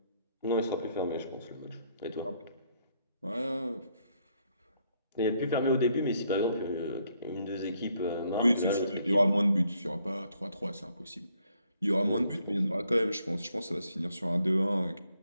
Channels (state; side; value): inverted; both; correlation -0.71